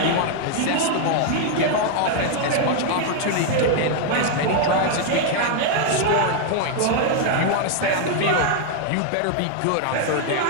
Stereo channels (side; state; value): both; different; correlation 0.00